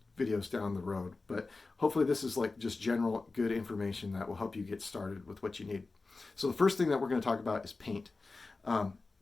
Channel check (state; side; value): quieter; right; 3.7 dB